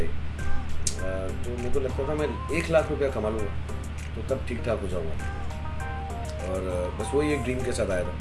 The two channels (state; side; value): identical; both; correlation 1.00